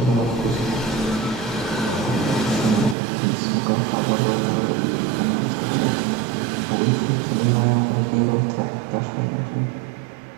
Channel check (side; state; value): left; drops out; at 3.0 s